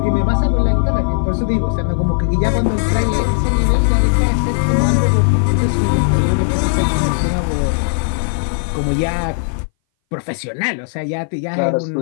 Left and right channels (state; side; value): silent; right; 61 dB below the other